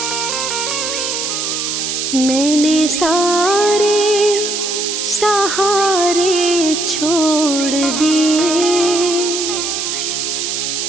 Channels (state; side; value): noise; right; hiss, 2 dB below the sound